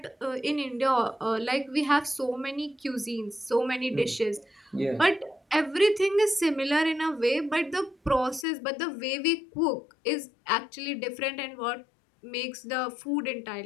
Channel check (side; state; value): right; drops out; at 8.5 s